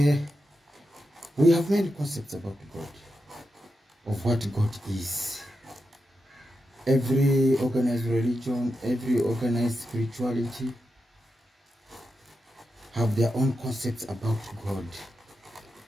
we have many concepts about God, of what God is. Every organized religion, every organized spirituality have their own concepts about God.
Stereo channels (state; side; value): normal; both; correlation 0.88